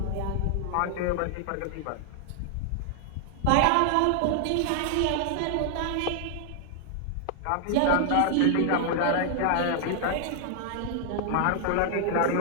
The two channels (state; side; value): different; both; correlation 0.00